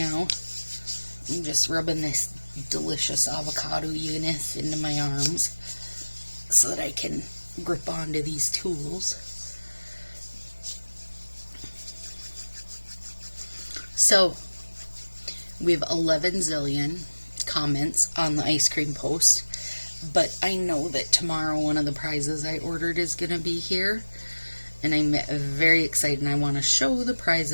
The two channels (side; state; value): both; inverted; correlation -1.00